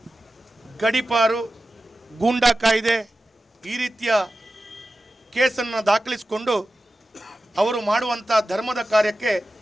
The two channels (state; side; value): normal; both; correlation 0.93